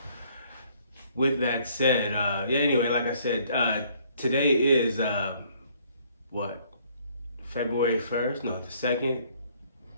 with that said, anyway, like I said, today is, what, February 1st? No, the 2nd,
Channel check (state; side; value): inverted; both; correlation -0.62